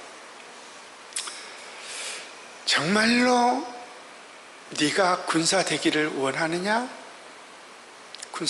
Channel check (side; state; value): both; identical; correlation 1.00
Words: 정말로 네가 군사 되기를 원하느냐?